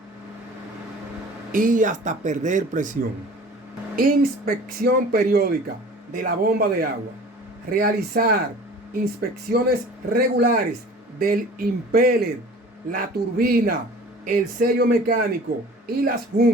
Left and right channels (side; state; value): both; normal; correlation 0.44